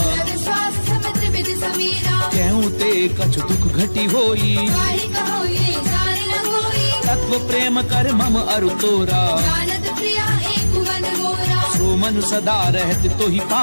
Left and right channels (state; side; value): inverted; both; correlation -1.00